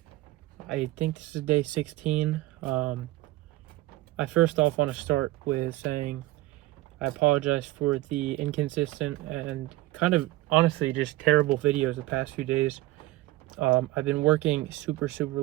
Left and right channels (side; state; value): left; quieter; 17.8 dB